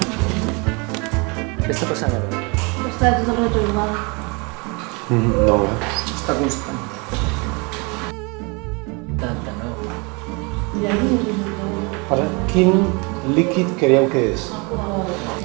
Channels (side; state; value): left; quieter; 29.7 dB